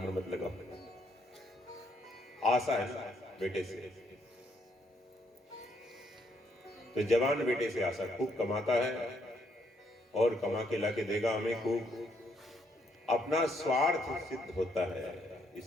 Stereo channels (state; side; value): normal; both; correlation 0.72